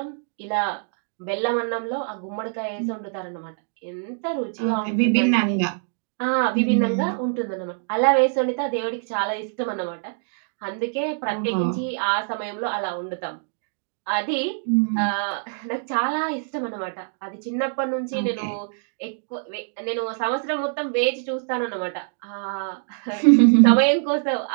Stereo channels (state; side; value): silent; left; digital silence